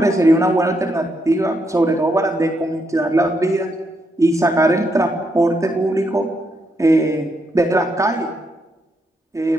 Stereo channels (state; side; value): normal; both; correlation 0.79